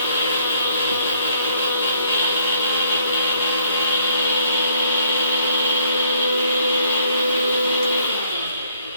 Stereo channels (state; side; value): inverted; both; correlation -0.65